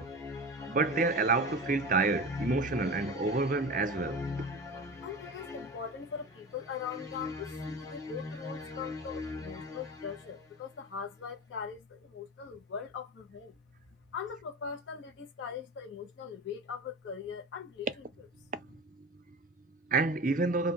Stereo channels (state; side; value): normal; both; correlation 0.30